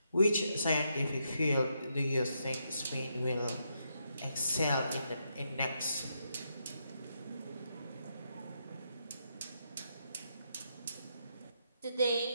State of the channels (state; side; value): inverted; both; correlation -0.80